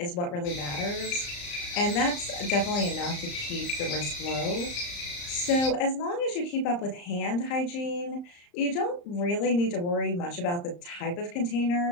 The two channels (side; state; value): right; late; 35 ms